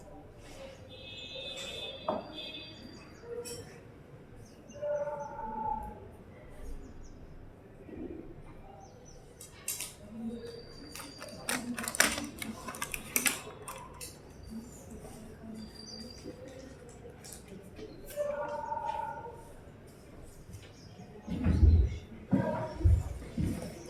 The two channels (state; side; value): identical; both; correlation 1.00